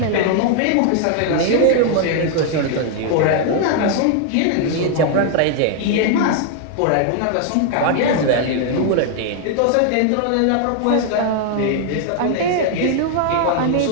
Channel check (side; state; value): both; different; correlation 0.00